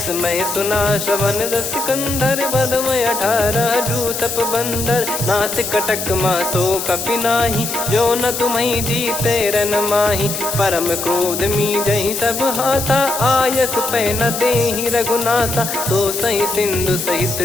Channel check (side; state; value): left; noise; hiss, 5 dB below the sound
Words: सुना श्रवण दस कंधर, बदमय 18 जूतप बंदर। नाथ कटक मासो कपि नाही, जो न तुम्हि जीते रन माही। परम क्रोध मी जहि सब हाथा, आयस पै न देहि रघुनाथा। सो सही सिंधु सहित